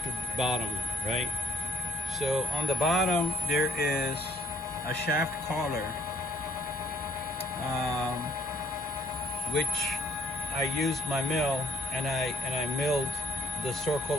bottom, right? So on the bottom there is a shaft collar, which I used my mill and I milled the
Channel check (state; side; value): normal; both; correlation 0.61